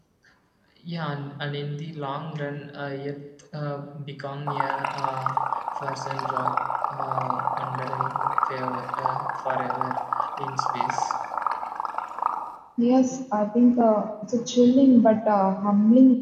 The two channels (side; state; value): both; identical; correlation 1.00